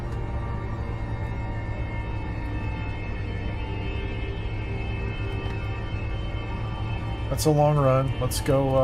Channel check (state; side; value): identical; both; correlation 1.00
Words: That's a long run. Let's